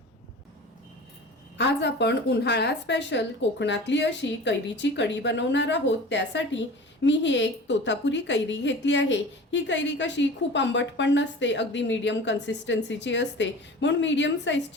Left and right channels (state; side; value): normal; both; correlation 0.38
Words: आज आपण उन्हाळा स्पेशल कोकणातली अशी कैरीची कढी बनवणार आहोत. त्यासाठी मी ही एक तोतापुरी कैरी घेतली आहे. ही कैरी कशी खूप आंबट पण नसते, अगदी मीडियम कन्सिस्टन्सीची असते, म्हणून मीडियम